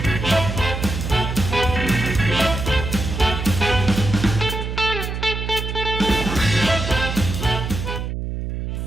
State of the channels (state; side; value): noise; right; hum, 4 dB below the sound